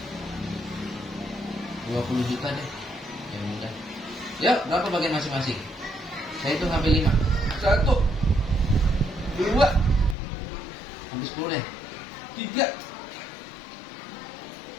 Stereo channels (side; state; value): right; drops out; at 10.2 s